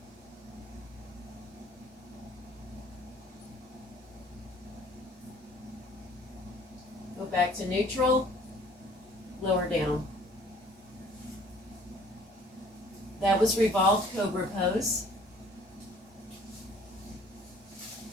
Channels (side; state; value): both; normal; correlation 0.55